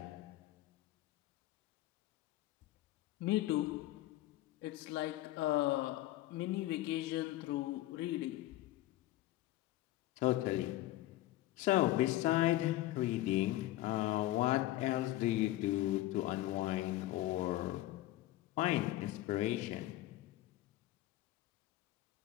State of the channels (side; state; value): right; quieter; 16.0 dB